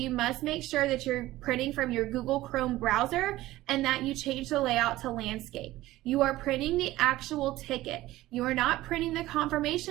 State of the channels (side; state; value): left; quieter; 16.6 dB